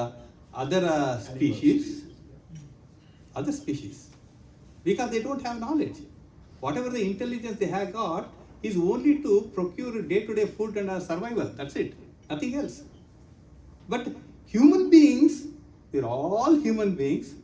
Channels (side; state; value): both; identical; correlation 1.00